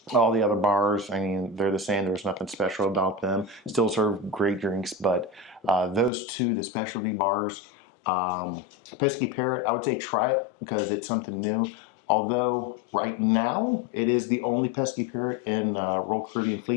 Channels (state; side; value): drops out; right; at 6.1 s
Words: All the other bars, I mean, they're the same. There's nothing special about them. Still serve great drinks, but those two, the specialty bars, Pesky Parrot, I would say try it because it's something new. Although right now it is the only Pesky Parrot in Royal Caribbean